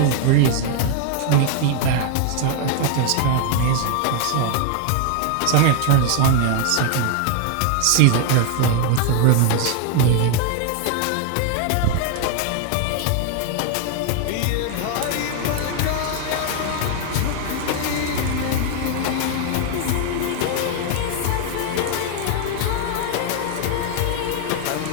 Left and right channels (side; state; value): both; different; correlation 0.00